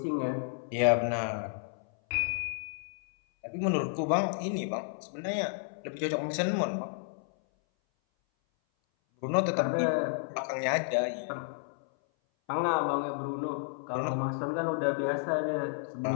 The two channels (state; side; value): silent; right; 57 dB below the other